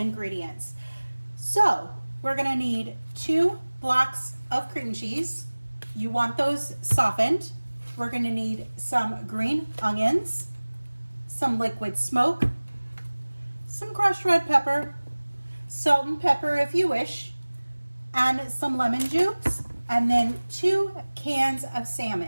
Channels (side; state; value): both; inverted; correlation -1.00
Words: So we're going to need 2 blocks of cream cheese. You want those softened. We're going to need some green onions, some liquid smoke, some crushed red pepper, salt and pepper if you wish, and some lemon juice, and then 2 cans of